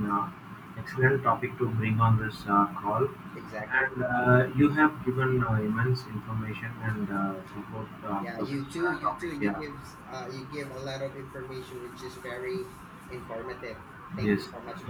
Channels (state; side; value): identical; both; correlation 1.00